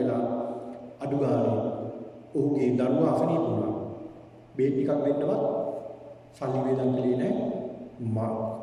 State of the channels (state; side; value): identical; both; correlation 1.00